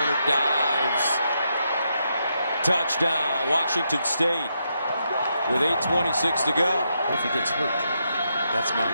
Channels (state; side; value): inverted; both; correlation -0.81